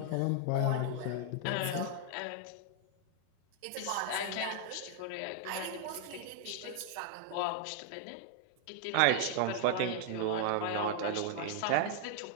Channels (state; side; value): different; both; correlation 0.00